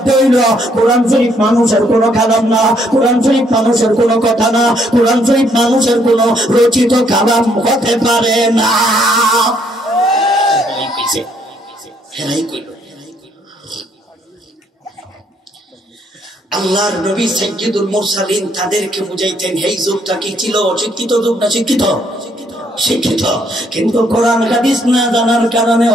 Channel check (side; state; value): both; normal; correlation 0.69